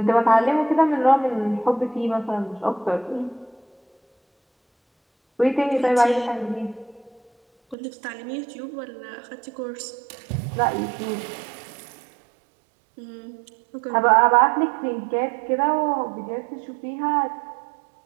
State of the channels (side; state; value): left; drops out; at 7.8 s